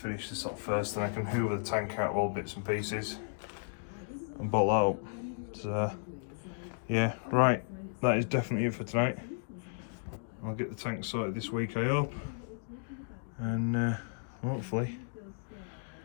this up first, and I can hoover the tank out of all bits and pieces and bolt that up. So yeah, right, that is definitely it for tonight. I'll get the tank sorted this week, I hope, and hopefully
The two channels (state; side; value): silent; right; digital silence